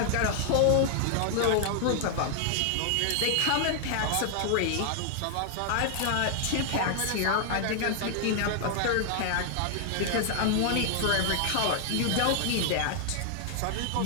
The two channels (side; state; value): both; different; correlation 0.00